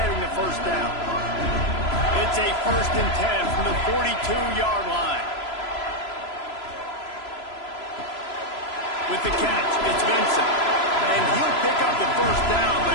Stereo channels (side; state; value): right; late; 3.0 ms